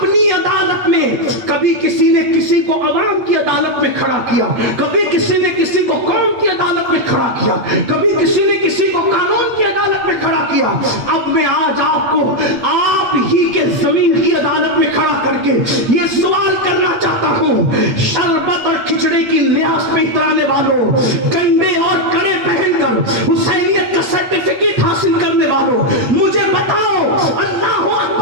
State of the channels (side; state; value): left; late; 8.6 ms